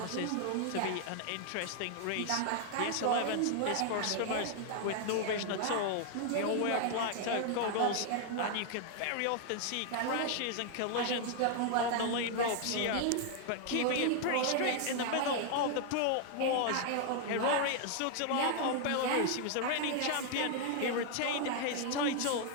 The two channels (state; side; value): different; both; correlation 0.00